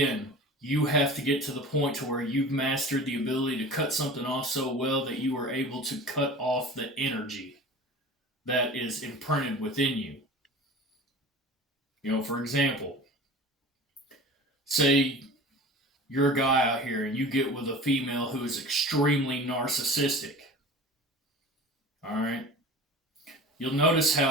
you have to get to the point to where you've mastered the ability to cut something off so well that you are able to cut off the energy that is imprinted within you. For example, say you're a guy out here and you get with a female who is extremely narcissistic. All right? You'll notice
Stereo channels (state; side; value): normal; both; correlation 0.38